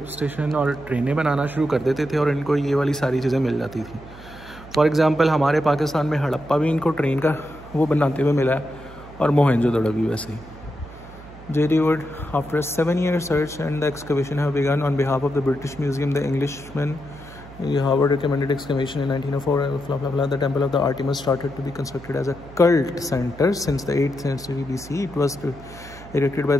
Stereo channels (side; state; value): right; noise; hum, 18 dB below the sound